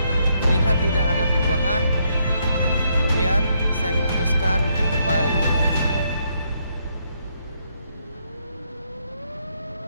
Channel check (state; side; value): inverted; both; correlation -0.75